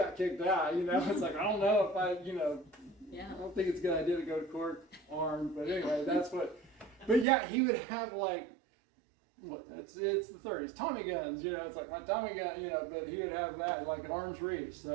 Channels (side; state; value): left; drops out; at 7.2 s